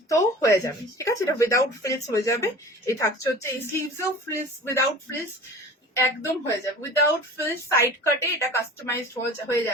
তো হয়ে যাবে ঠিক আছে এটা উইদাউট ফ্রিলস হয়ে যাবে এই থাকছে হচ্ছে এই স্লিভসেও ফ্রিলস উইদাউট ফ্রিলস একদম হয়ে যাবে উইদাউট ফ্রিলস সাইড কাটে এটা কাস্টমাইজড হয়ে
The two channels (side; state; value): both; normal; correlation 0.40